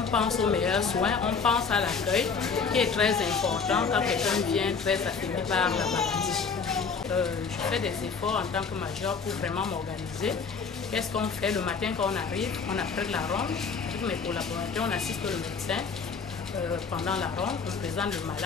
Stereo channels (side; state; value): right; quieter; 5.4 dB